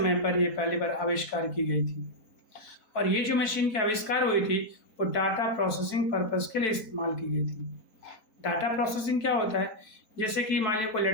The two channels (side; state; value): right; late; 4.1 ms